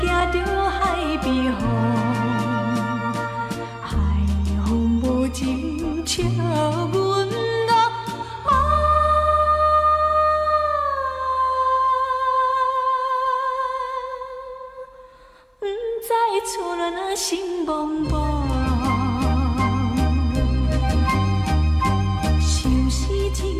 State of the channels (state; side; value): identical; both; correlation 1.00